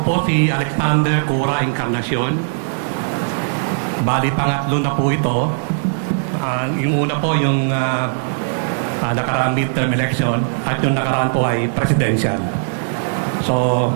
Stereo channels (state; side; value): silent; left; digital silence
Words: po si Alexander Cura Encarnacion. Bali, pangatlo na po ito. Yung una po yung nakaraang midterm election at yung nakaraan po ay presidential. So,